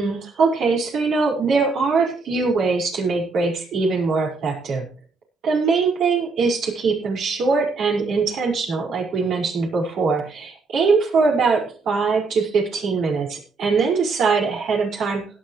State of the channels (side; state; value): left; quieter; 4.1 dB